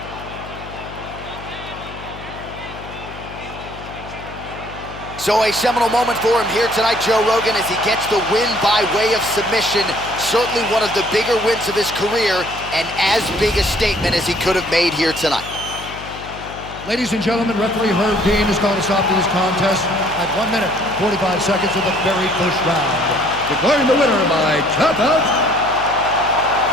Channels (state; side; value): noise; left; hum, 14 dB below the sound